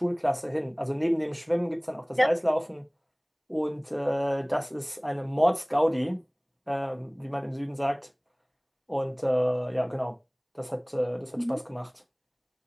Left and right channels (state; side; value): identical; both; correlation 1.00